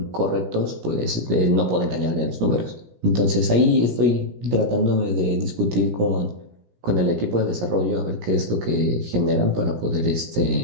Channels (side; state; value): left; late; 17 ms